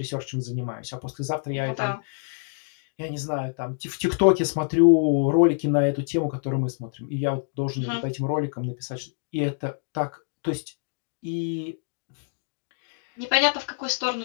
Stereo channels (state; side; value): silent; right; digital silence